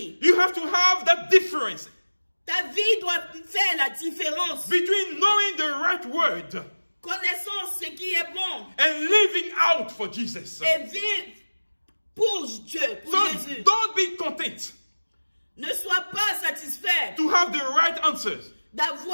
you have to have that difference Ta vie doit faire la différence. between knowing the right word Connaissant ce qui est bon and living out for Jesus. et vivre pour Dieu, pour So Jésus. don't be content Ne sois pas satisfait to have the right answers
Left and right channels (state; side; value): inverted; both; correlation -1.00